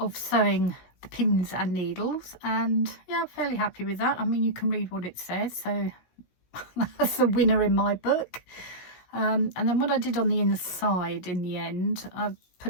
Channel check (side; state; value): right; late; 17 ms